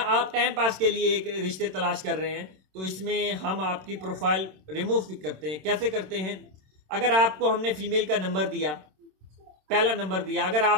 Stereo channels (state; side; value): late; left; 27 ms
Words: आप टाइम पास के लिए एक रिश्ते तलाश कर रहे हैं, तो इसमें हम आपकी प्रोफाइल रिमूव भी करते हैं। कैसे करते हैं? अगर आपको हमने फीमेल का नंबर दिया, पहला नंबर दिया, अगर